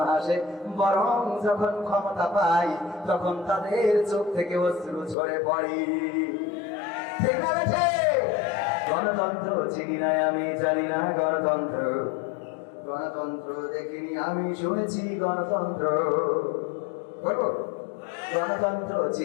হাসে, বরং যখন ক্ষমতা পায় তখন তাদের চোখ থেকে অশ্রু ঝরে পড়ে। ঠিক না বেঠে? গণতন্ত্র চিনি না আমি, জানি না গণতন্ত্র, গণতন্ত্র দেখিনি আমি, শুনেছি গণতন্ত্র। গণতন্ত্র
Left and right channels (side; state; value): right; drops out; at 5.2 s